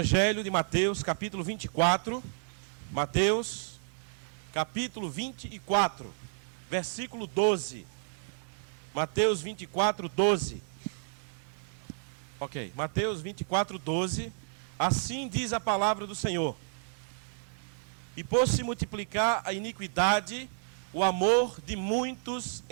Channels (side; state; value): left; silent; digital silence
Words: de Mateus, capítulo 24. Mateus, capítulo 24, versículo 12. Mateus 24, 12. Ok, Mateus 24, 12. Assim diz a palavra do Senhor: e por se multiplicar a iniquidade, o amor de muitos